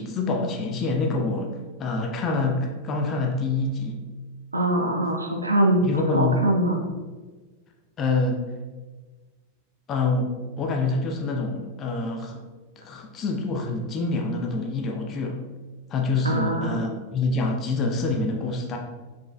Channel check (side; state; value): both; normal; correlation 0.02